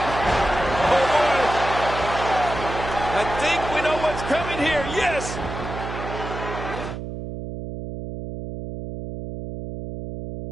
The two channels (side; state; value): right; noise; hum, 7 dB below the sound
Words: Oh, boy. I think we know what's coming here. Yes.